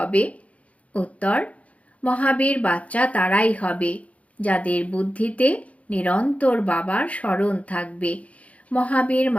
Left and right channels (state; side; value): late; right; 0.066 ms